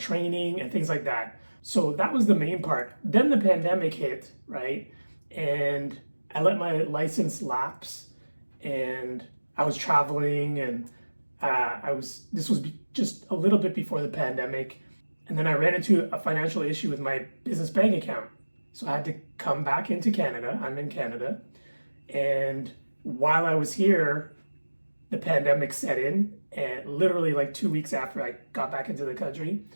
and things like that. So that was the main part. Then the pandemic hit, right? And I let my license lapse, and I was traveling, and this was just a little bit before the pandemic. And then I ran into a financial issue with my business bank account. So I had to come back into Canada. I'm in Canada. And while I was here, the pandemic set in, and literally like 2 weeks after I got back into the country.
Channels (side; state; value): both; inverted; correlation -1.00